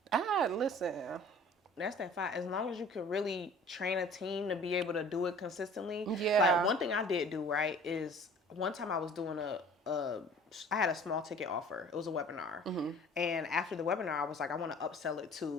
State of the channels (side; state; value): both; normal; correlation 0.47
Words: Listen. That's that fire. As long as you can really train a team to be able to do it consistently. Yeah. Like, one thing I did do, right, is one time I was doing I had a small ticket offer. It was a webinar. Mm-hmm. And after the webinar, I was like, I want to upsell it